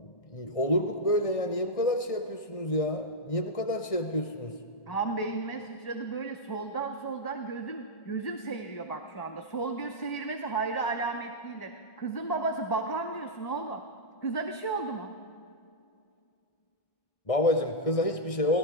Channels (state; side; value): late; right; 1.6 ms